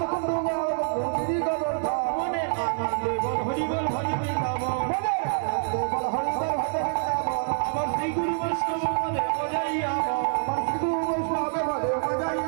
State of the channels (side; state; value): left; silent; digital silence